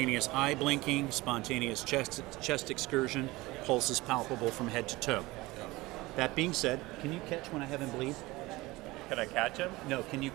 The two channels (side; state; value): left; quieter; 20.5 dB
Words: eye blinking, spontaneous chest excursion, pulse is palpable from head to toe. That being said, can you catch when I have him bleed? Can I catch him? No, can you